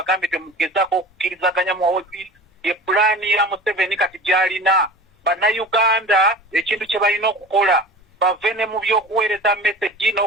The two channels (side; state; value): both; normal; correlation 0.37